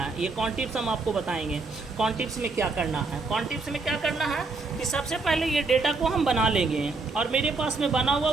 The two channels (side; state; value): left; quieter; 3.8 dB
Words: ये कॉन्ट इप्स हम आपको बताएंगे। कॉन्ट इप्स में क्या करना है, कॉन्ट इप्स में क्या करना है कि सबसे पहले ये डेटा को हम बना लेंगे और मेरे पास में बना हुआ